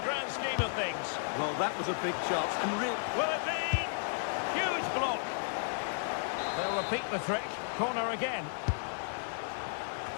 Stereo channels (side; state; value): right; silent; 55 dB below the other